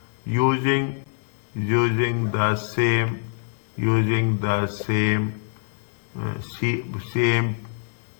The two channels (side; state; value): right; silent; 62 dB below the other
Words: Using the same